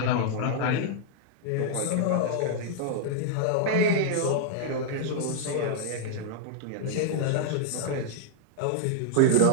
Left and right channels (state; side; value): different; both; correlation -0.01